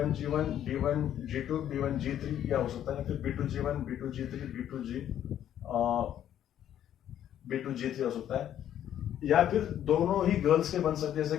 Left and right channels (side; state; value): right; quieter; 10.8 dB